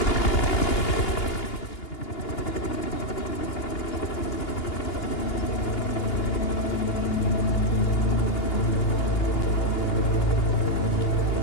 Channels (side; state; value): right; late; 2.8 ms